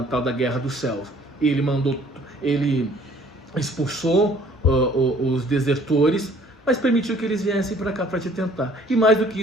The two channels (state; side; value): normal; both; correlation 0.56